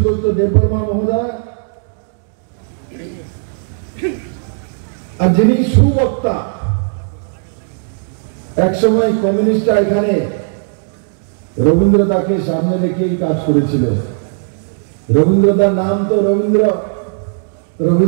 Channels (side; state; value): left; silent; digital silence